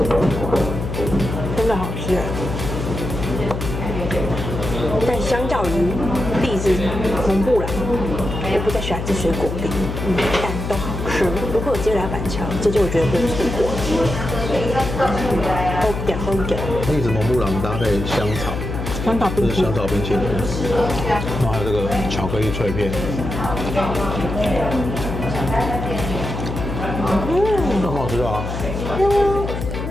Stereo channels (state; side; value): noise; left; hum, 5 dB below the sound